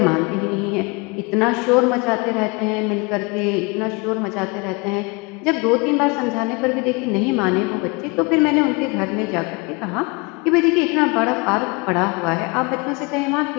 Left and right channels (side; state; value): right; quieter; 28.4 dB